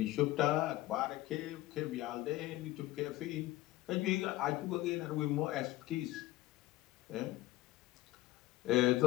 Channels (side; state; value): right; quieter; 16.8 dB